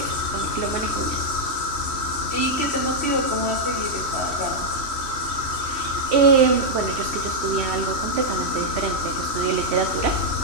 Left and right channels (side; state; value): left; late; 3.1 ms